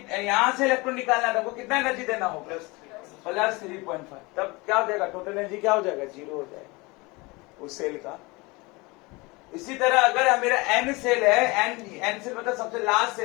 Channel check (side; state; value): right; quieter; 24.8 dB